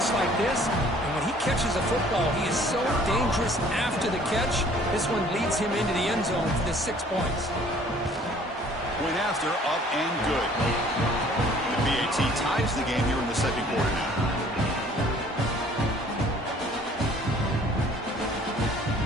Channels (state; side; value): normal; both; correlation 0.55